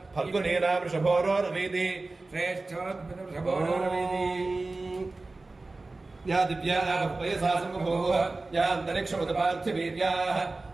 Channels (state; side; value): quieter; left; 3.3 dB